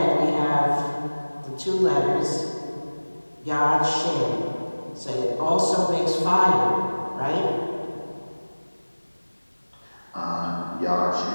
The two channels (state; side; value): inverted; both; correlation -1.00